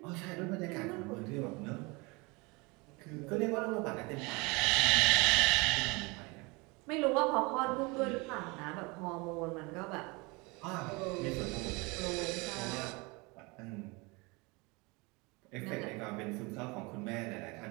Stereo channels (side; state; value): left; quieter; 26.7 dB